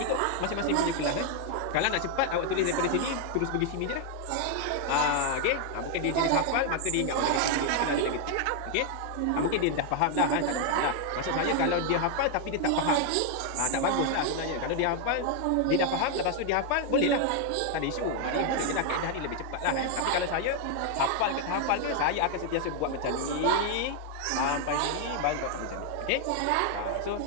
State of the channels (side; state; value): both; different; correlation 0.00